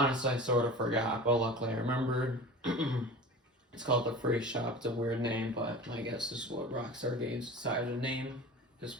I sort of forgot, but luckily I remembered. It's called the Freak Shop. It's a weird name, but I guess this is what Rockstar Games decided to name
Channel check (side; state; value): both; normal; correlation 0.36